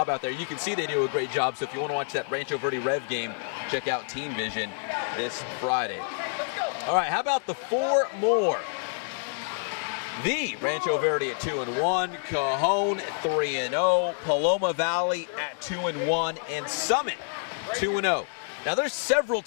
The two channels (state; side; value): silent; right; digital silence